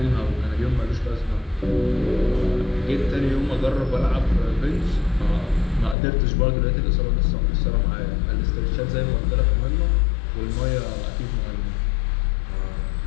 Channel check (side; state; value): right; drops out; at 6.0 s